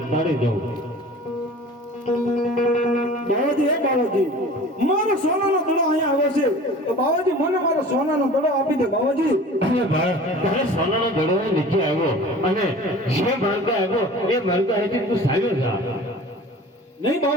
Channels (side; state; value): both; normal; correlation 0.42